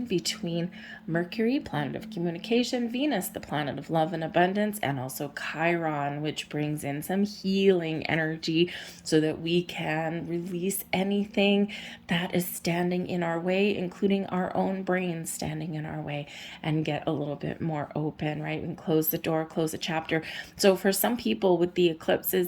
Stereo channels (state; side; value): identical; both; correlation 1.00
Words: between Mercury, planet of communication, Venus, the planet of love and abundance, and also Chiron, which brings in some healing energy so that we can release anything that is standing in our way, including our own brains standing in our way, and get a little bit more open, right? And close the door, close a chapter. So for some people with the